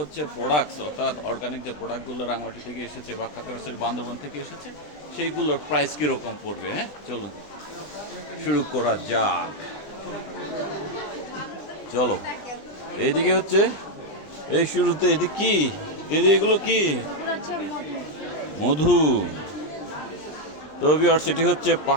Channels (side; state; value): right; late; 20 ms